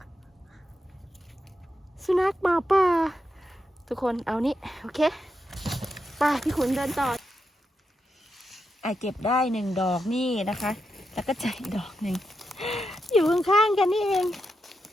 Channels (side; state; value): both; normal; correlation 0.86